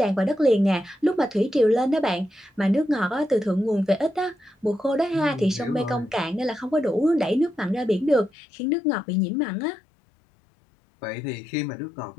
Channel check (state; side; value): drops out; right; at 8.3 s